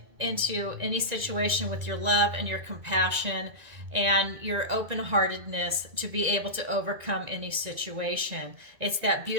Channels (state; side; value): late; left; 1.9 ms